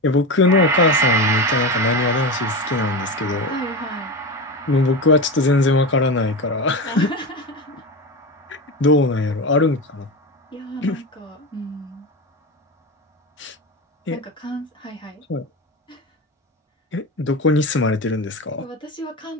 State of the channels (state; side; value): normal; both; correlation 0.21